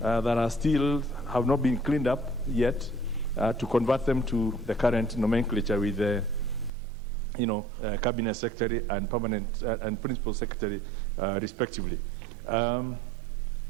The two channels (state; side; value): drops out; left; at 6.7 s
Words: are still have not been cleaned up yet, to convert them to the current nomenclature with the cabinet secretary and permanent and principal secretary, respectively.